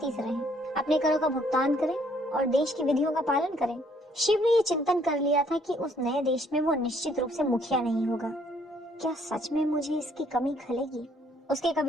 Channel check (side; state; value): both; normal; correlation 0.65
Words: से रहें, अपने करों का भुगतान करें और देश की विधियों का पालन करें। शिव ने ये चिंतन कर लिया था कि उस नए देश में वो निश्चित रूप से मुखिया नहीं होगा। क्या सच में मुझे इसकी कमी खलेगी? उसके